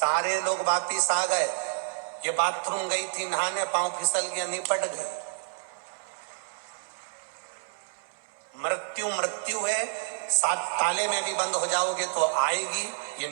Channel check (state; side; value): silent; left; digital silence